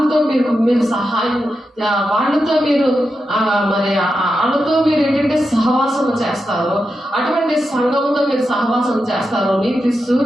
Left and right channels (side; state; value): both; normal; correlation 0.88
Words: మీరు సహాయం, వాళ్ళతో మీరు మరి వాళ్ళతో మీరు ఏంటంటే సహవాసం చేస్తారు. అటువంటి సంఘంతో మీరు సహవాసం చేస్తారు. నీతి